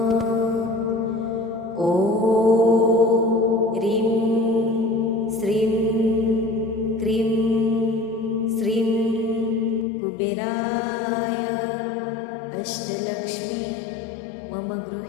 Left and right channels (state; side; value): drops out; right; at 9.9 s